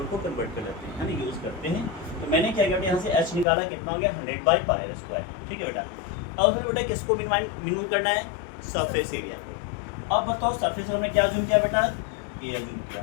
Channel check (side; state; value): right; drops out; at 3.5 s